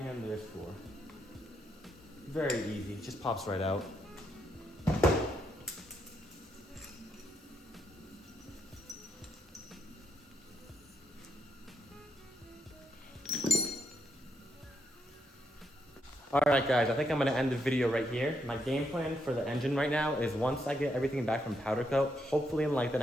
there's 4. Very easy, just pops right out. Alright guys, I think I'm going to end the video right here. My game plan for the engine right now is once I get everything back from powder coat, hopefully in like the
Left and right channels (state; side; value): normal; both; correlation 0.78